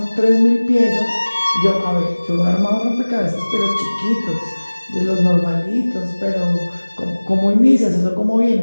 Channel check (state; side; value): inverted; both; correlation -1.00